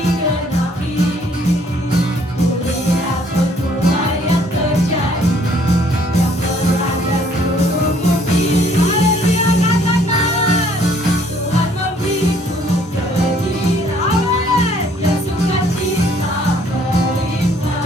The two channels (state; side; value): normal; both; correlation 0.62